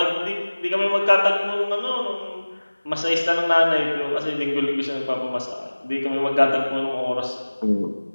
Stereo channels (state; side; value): inverted; both; correlation -1.00